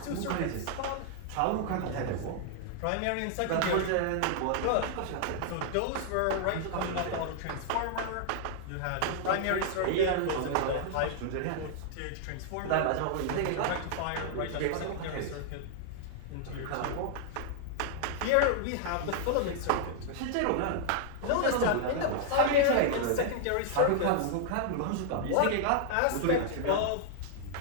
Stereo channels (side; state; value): both; different; correlation -0.01